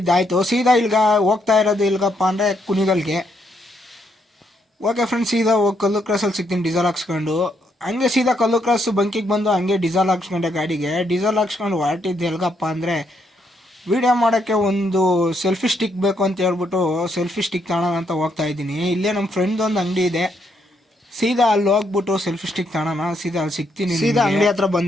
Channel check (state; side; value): normal; both; correlation 0.75